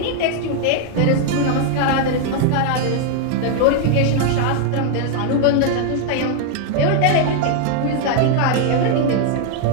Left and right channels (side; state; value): both; different; correlation 0.00